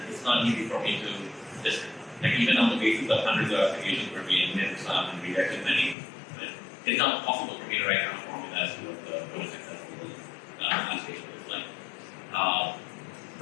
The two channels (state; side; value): drops out; right; at 6.0 s